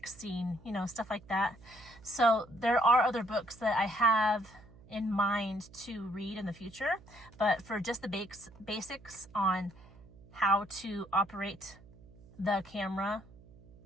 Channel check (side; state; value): right; noise; hum, 22 dB below the sound